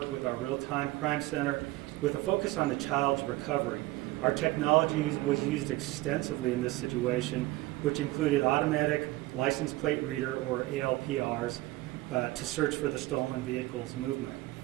with our real-time crime center with a focus on the child's recovery. Our technology was used extensively in this situation, which included automatic license plate reader, or ALPRs, to search for the stolen vehicle's movement.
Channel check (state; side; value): quieter; left; 19.2 dB